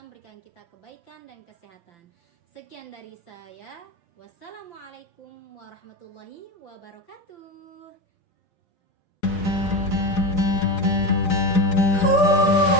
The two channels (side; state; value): right; late; 4.9 ms